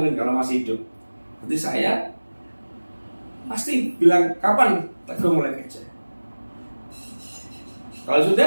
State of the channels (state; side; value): inverted; both; correlation -1.00